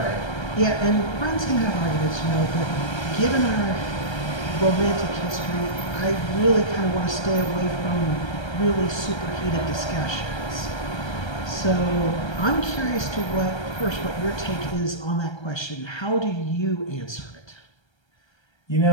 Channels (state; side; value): late; right; 1.3 ms